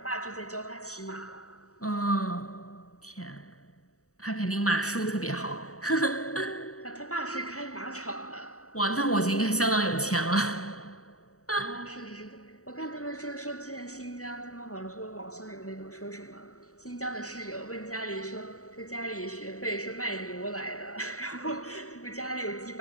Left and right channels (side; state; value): right; late; 0.65 ms